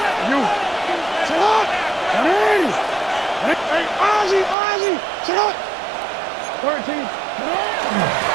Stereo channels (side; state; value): left; drops out; at 4.5 s